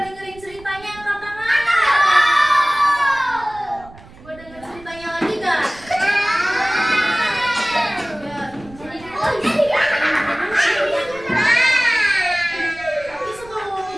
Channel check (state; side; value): noise; right; rumble, 21 dB below the sound